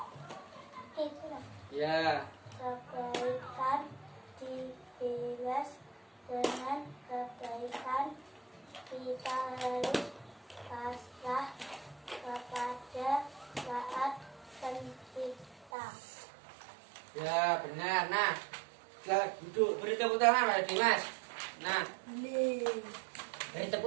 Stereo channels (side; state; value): left; drops out; at 15.7 s